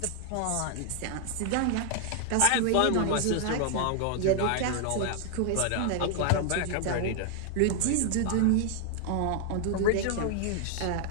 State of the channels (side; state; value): both; different; correlation 0.00